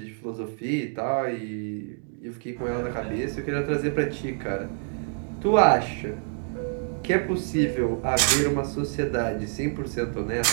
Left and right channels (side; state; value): left; silent; 60 dB below the other